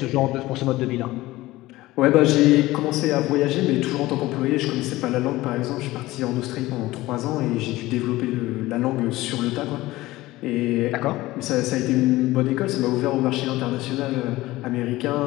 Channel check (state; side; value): quieter; right; 18.1 dB